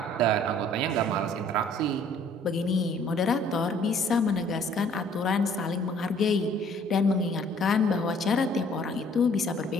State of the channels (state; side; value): normal; both; correlation 0.58